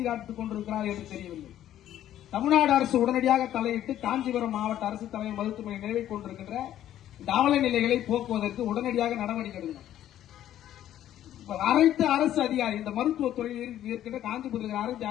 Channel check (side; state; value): right; quieter; 11.9 dB